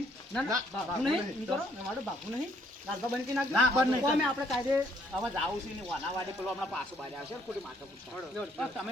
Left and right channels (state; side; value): normal; both; correlation 0.67